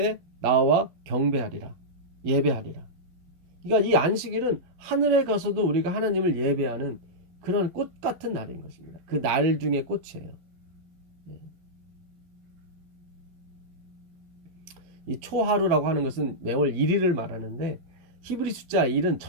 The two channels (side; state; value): left; late; 12 ms